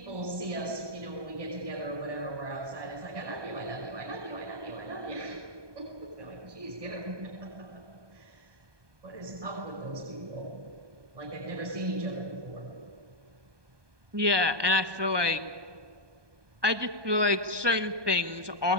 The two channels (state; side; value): late; left; 1.2 ms